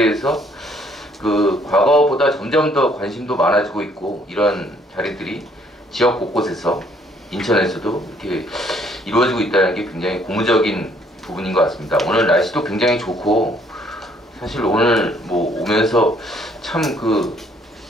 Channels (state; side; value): normal; both; correlation 0.64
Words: 과거보다 점점 더 관심도 많아지고 있고, 이런 자리들이 지역 곳곳에서 인천에서도 이렇게 이루어지고 있다는 게 굉장히 고무적인 부분인 것 같습니다. 오늘 날씨도 굉장히 좋고, 사실 오늘 오면서 참